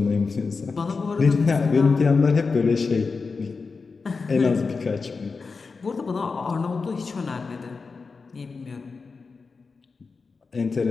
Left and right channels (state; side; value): quieter; right; 4.6 dB